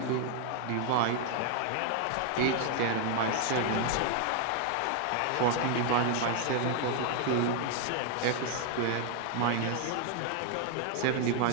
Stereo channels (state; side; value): different; both; correlation 0.00